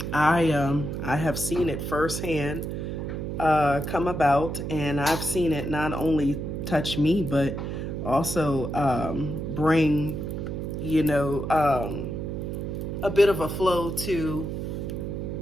I have seen it firsthand come about, and I've seen it not only touch me but also bring a bit of a flow to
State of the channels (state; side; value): noise; right; hum, 4 dB below the sound